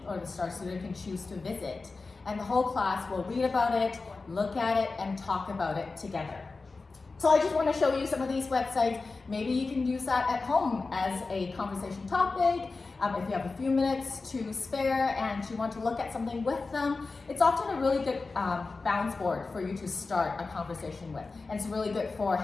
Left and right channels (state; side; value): quieter; right; 3.9 dB